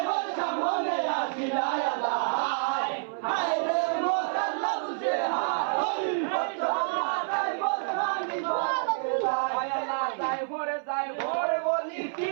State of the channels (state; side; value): silent; left; 59 dB below the other